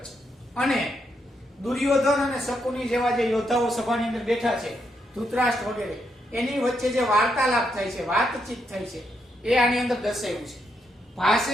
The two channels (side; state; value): both; normal; correlation 0.79